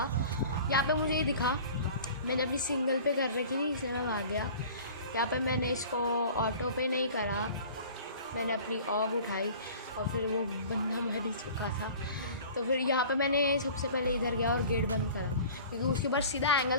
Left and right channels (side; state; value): both; inverted; correlation -0.43